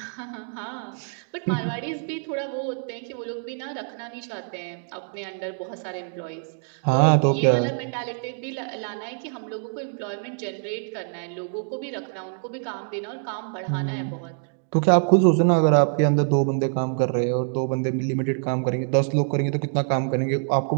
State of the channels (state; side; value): silent; left; 62 dB below the other